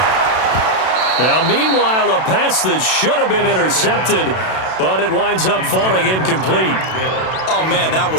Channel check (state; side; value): late; right; 32 ms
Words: Now, meanwhile, a pass that should have been intercepted, but it winds up falling incomplete. Oh, man, that